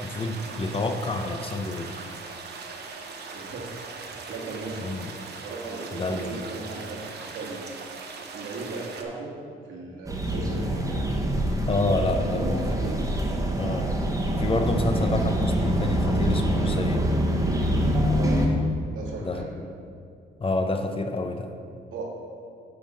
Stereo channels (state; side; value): normal; both; correlation 0.69